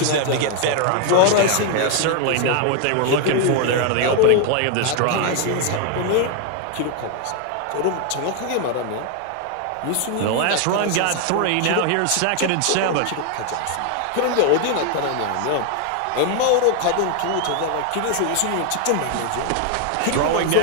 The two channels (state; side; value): different; both; correlation 0.00